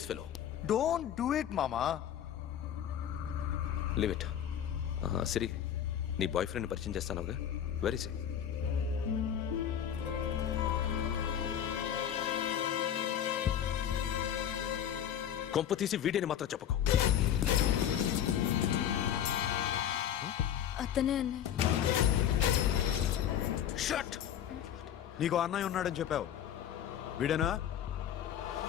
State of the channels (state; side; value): quieter; right; 9.9 dB